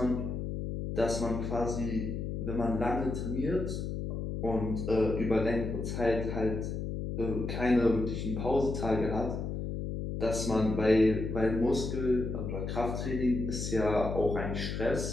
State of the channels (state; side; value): noise; left; hum, 4 dB below the sound